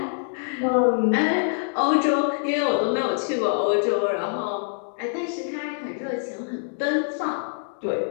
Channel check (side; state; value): right; silent; digital silence